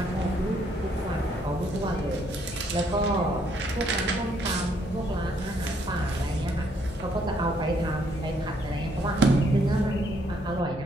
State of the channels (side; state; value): both; normal; correlation 0.69